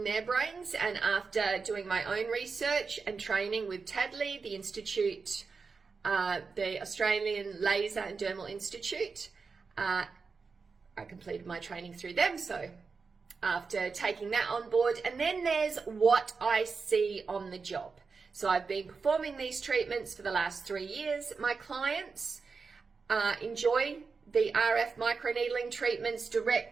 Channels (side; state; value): left; quieter; 4.8 dB